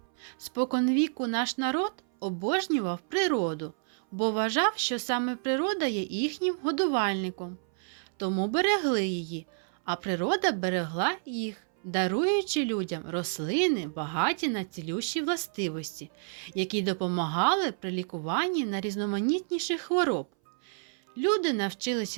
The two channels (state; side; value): silent; left; 58 dB below the other